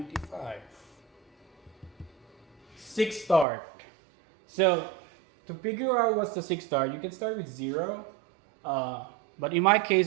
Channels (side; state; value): left; drops out; at 3.5 s